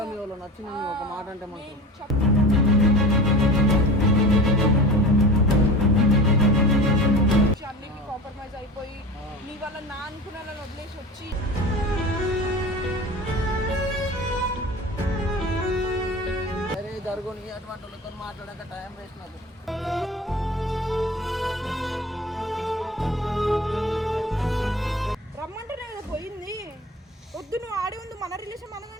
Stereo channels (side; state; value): both; normal; correlation 0.35